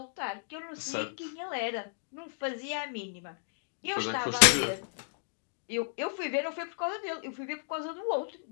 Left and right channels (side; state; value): right; silent; digital silence